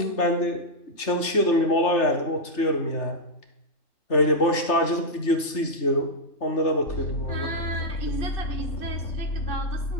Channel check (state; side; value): late; right; 3.3 ms